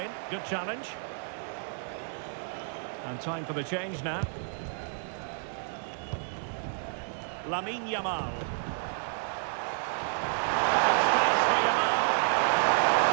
Good challenge. And time for the change now. Lamine Yamal. And space for Yamal.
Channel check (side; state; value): left; silent; 58 dB below the other